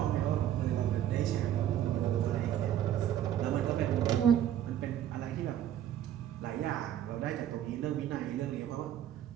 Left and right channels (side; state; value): left; quieter; 11.0 dB